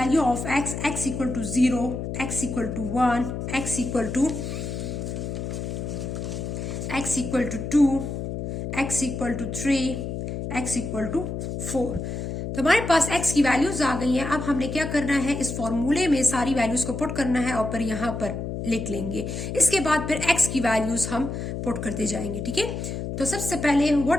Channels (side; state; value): left; noise; hum, 5 dB below the sound